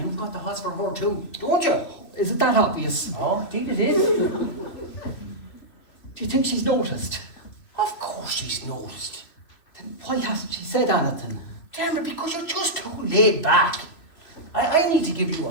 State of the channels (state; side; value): late; right; 3.2 ms